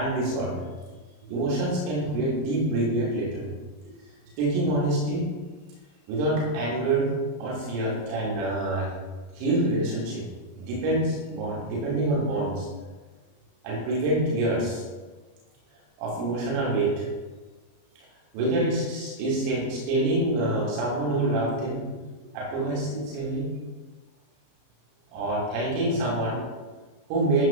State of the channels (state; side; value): late; left; 34 ms